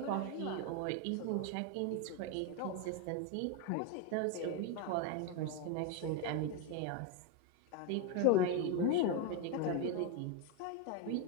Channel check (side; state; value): both; different; correlation 0.02